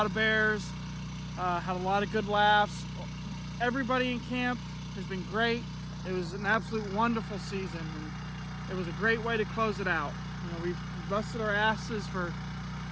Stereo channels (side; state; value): both; identical; correlation 1.00